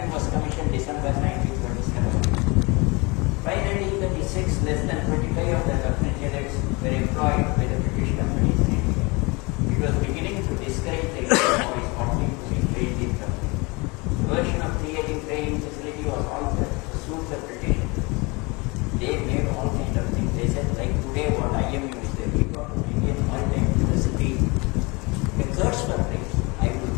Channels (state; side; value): quieter; right; 26.9 dB